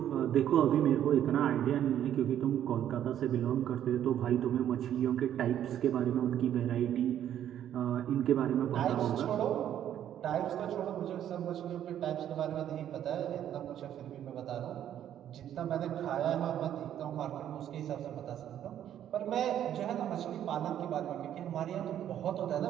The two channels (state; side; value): quieter; left; 10.7 dB